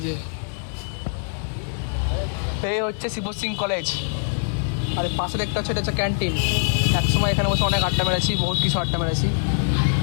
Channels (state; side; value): silent; right; 63 dB below the other